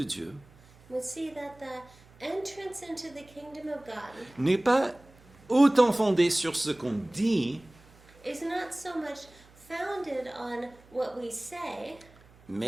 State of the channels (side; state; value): right; noise; hum, 26 dB below the sound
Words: Dieu We see that the entrance into the kingdom of God n'est pas autant fondée sur ce qu'on dit, is not so much founded on what we say,